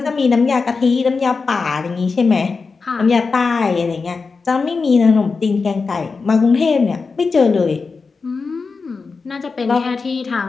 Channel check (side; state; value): right; quieter; 4.6 dB